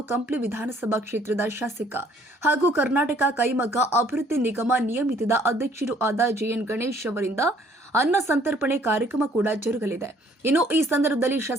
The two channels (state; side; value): normal; both; correlation 0.61